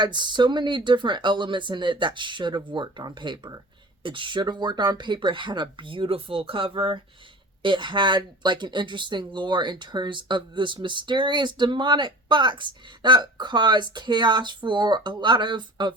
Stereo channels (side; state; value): both; normal; correlation 0.39